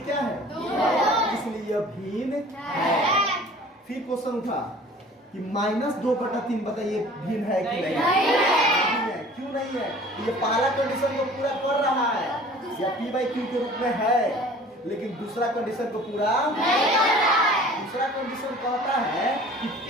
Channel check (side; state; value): both; normal; correlation 0.47